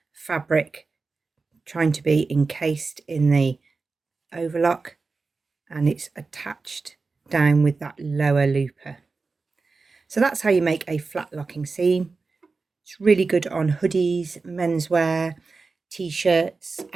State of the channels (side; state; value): left; quieter; 4.1 dB